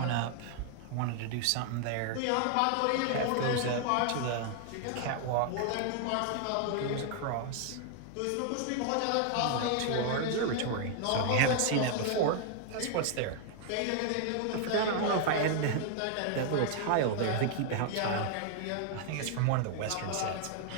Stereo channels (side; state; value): both; different; correlation 0.00